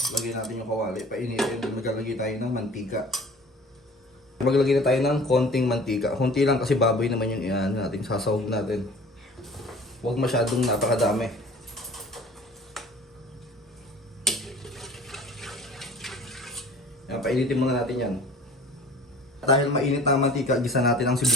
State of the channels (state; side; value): normal; both; correlation 0.46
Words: natin yung kawali, painitin, maglalagay tayo ng mantika. Maglagay na tayo ng konting mantika. Konti lang kasi baboy naman yung iyan natin, sasawag natin. Huwag masyadong napakadami. Yan, painitin muna natin yan. Dahil mainit na ang mantika, gisa natin ang